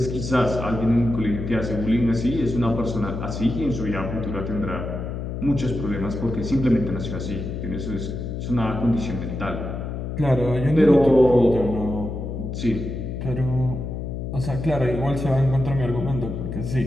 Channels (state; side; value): noise; left; hum, 5 dB below the sound